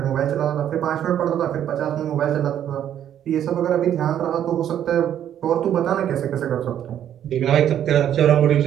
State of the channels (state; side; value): quieter; left; 10.3 dB